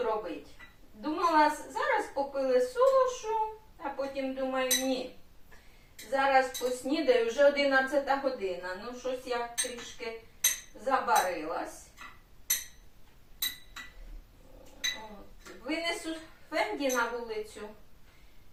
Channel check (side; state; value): both; identical; correlation 1.00